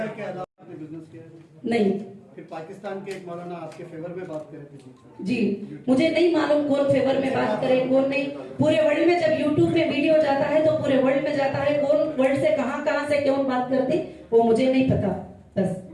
के अलावा आपने बिजनेस किया है? नहीं, फिर पाकिस्तान के एक मौलाना आपके फेवर में बात करे थे जी मुझे नहीं मालूम कौन फेवर में बात करे कौन नहीं। पूरे वर्ल्ड में जब यूट्यूब पे वीडियो जाता है तो पूरे वर्ल्ड में जाता है, कौन वर्ल्ड से कहां से कौन बात करती वो मुझे नहीं पता। बस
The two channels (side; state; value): both; identical; correlation 1.00